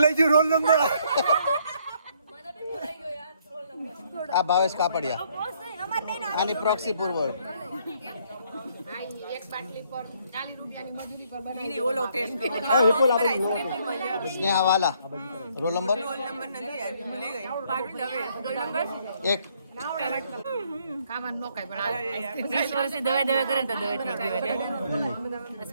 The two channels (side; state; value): both; inverted; correlation -0.68